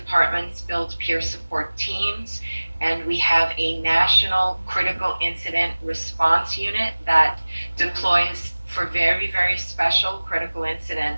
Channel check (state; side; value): inverted; both; correlation -1.00